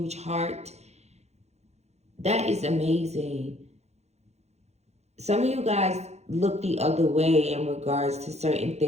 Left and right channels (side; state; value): left; late; 0.32 ms